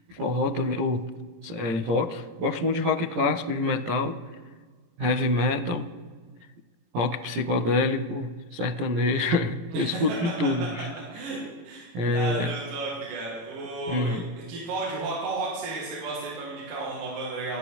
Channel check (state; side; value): late; left; 18 ms